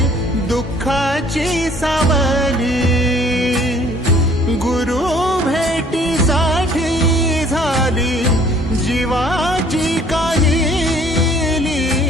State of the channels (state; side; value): normal; both; correlation 0.57